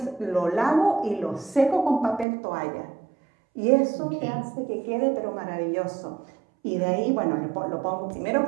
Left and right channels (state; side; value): drops out; left; at 2.2 s